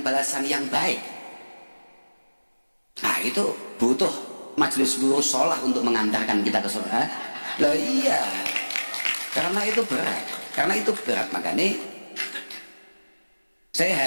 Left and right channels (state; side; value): inverted; both; correlation -1.00